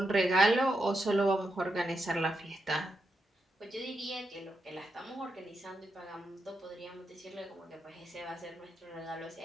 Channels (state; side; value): normal; both; correlation 0.85